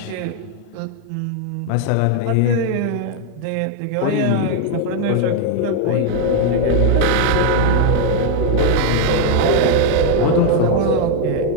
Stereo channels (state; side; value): different; both; correlation 0.01